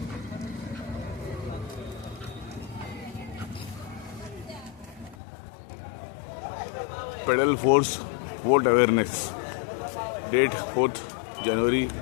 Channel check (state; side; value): drops out; right; at 5.2 s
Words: Pedal force vote awareness. Date 4 जानेवारी